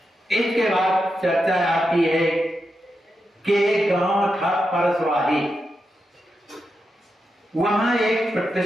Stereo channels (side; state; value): both; normal; correlation 0.87